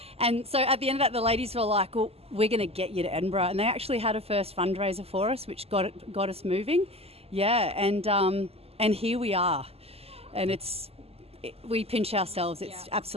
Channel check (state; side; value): late; left; 0.29 ms